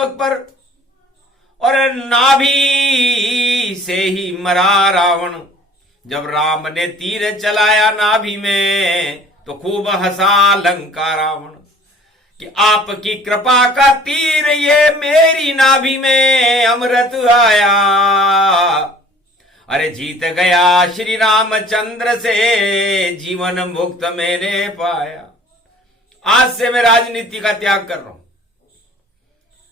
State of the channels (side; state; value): both; normal; correlation 0.50